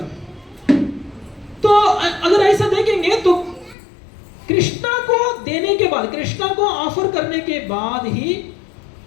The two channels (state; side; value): drops out; right; at 3.8 s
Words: तो अगर ऐसा देखेंगे तो कृष्णा को देने के बाद, कृष्णा को ऑफर करने के बाद ही